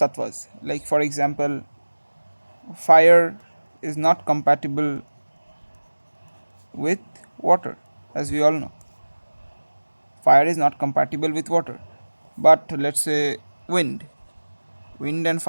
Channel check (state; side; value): inverted; both; correlation -1.00